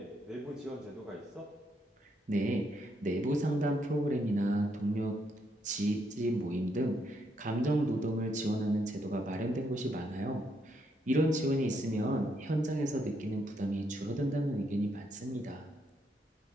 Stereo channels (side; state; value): both; normal; correlation 0.76